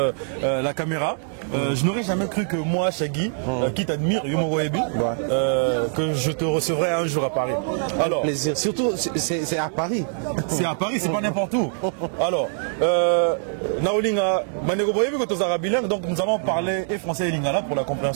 la caméra, je n'aurais jamais cru que moi, Shaggy, qui t'admire, Yumo Ebi, que je te recevrais un jour à Paris. Alors, plaisir. Surtout, c'est à Paris. C'est à Paris, c'est pas n'importe où. Alors, Naolinga, Manego Boyebi, bilingue, donc nous allons parler et français et lingala pour la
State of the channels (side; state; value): left; silent; digital silence